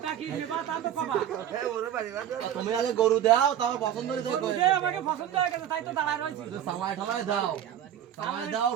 তুমি আগে গরু দাও তারপর পছন্দ আমাকে পছন্দ হয়ে গেছে তাই তো দাঁড়ায় রয়েছে সালাই ঠালাই দাও সালাই দাও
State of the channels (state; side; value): quieter; left; 10.6 dB